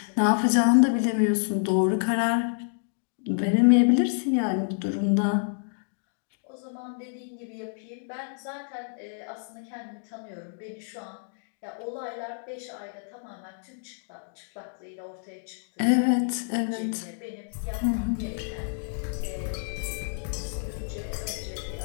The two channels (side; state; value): right; silent; digital silence